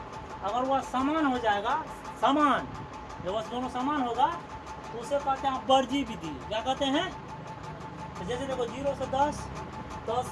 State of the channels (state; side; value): identical; both; correlation 1.00